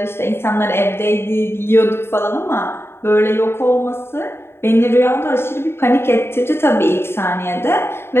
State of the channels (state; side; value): late; right; 0.11 ms